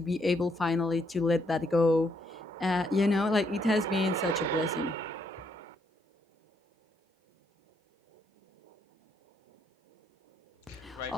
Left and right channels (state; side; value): normal; both; correlation 0.73